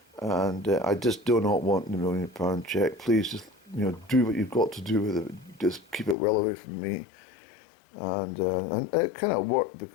and I just do not want the £1 million check. Please just, you know, do what you've got to do with it. Just keep it well away from me. And it kind of worked,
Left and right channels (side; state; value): right; drops out; at 6.2 s